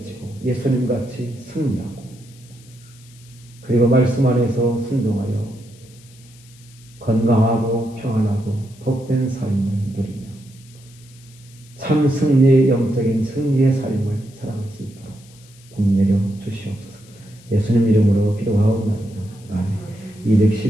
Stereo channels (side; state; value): left; noise; hiss, 25 dB below the sound